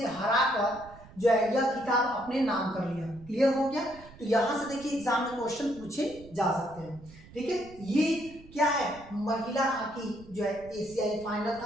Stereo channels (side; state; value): right; noise; rumble, 20 dB below the sound